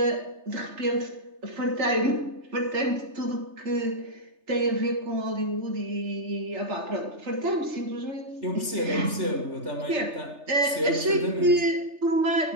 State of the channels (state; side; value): late; left; 3.3 ms